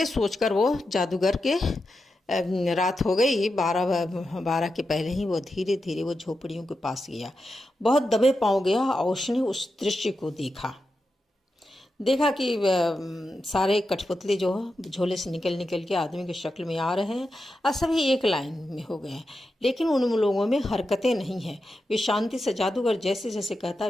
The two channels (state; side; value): normal; both; correlation 0.89